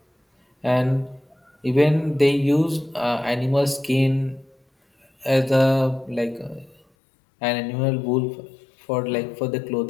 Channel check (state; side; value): drops out; right; at 6.8 s